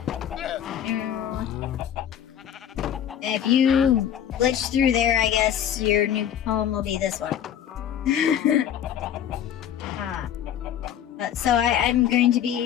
If you glitch through there, I guess your new home will be this one. So I'm going to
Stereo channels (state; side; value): quieter; right; 9.8 dB